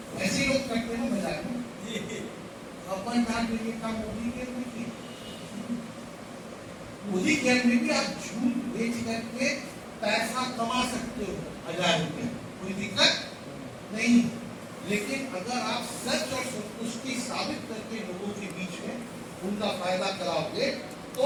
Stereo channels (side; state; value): both; identical; correlation 1.00